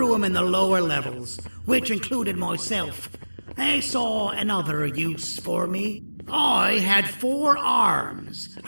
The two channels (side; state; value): both; inverted; correlation -1.00